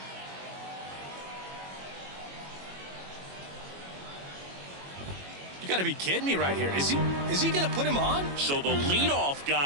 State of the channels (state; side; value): late; left; 21 ms